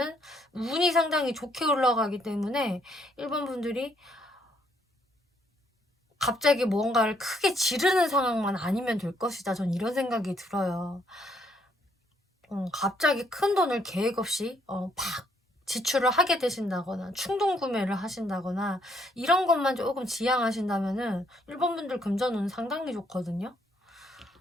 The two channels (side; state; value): both; normal; correlation 0.70